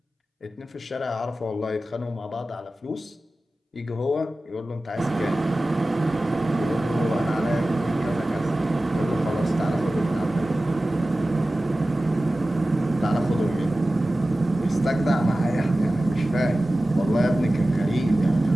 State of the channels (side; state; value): both; normal; correlation 0.96